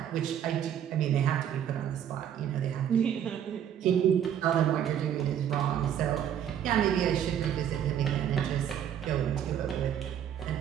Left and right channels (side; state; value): left; quieter; 9.6 dB